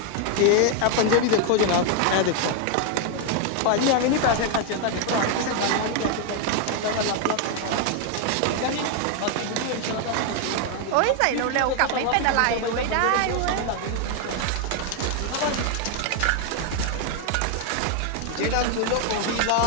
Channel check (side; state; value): both; different; correlation 0.01